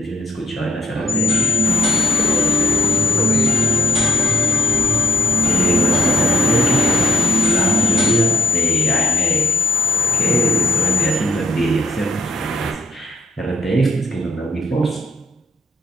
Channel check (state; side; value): normal; both; correlation 0.63